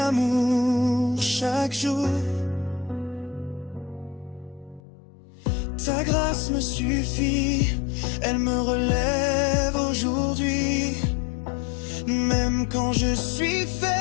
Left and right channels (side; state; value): right; drops out; at 4.8 s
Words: chaque jour. Ta grâce me suffit, elle me relève aujourd'hui. Même quand je suis